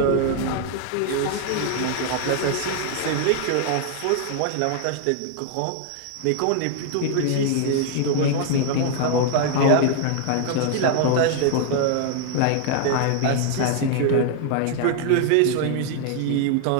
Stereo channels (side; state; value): both; different; correlation 0.00